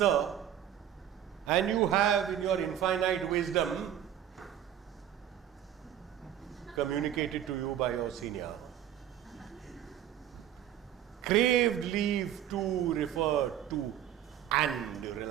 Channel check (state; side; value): quieter; left; 10.6 dB